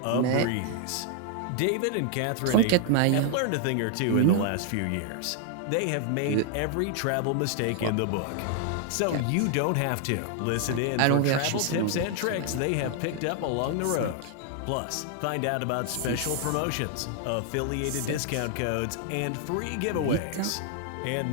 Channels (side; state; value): both; different; correlation 0.00